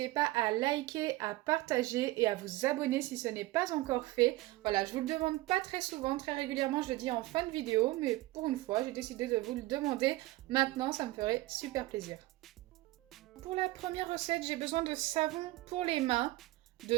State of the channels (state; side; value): quieter; left; 18.5 dB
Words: pas à liker, à partager et à vous abonner si ce n'est pas encore fait. Voilà, je vous le demande pas très souvent, très régulièrement je le dis en fin de vidéo, mais pour une fois j'ai décidé de vous le demander maintenant, ça me ferait super plaisir. Pour la première recette, j'ai besoin de savon pour les mains, de